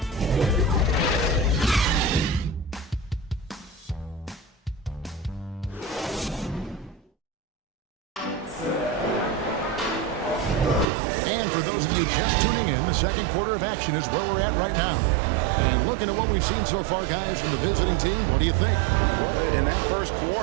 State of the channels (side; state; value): left; drops out; at 10.9 s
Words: And for those of you just tuning in, the second quarter of action is where we're at right now. And looking at what we've seen so far, guys, from the visiting team, what do you think? Well, in that first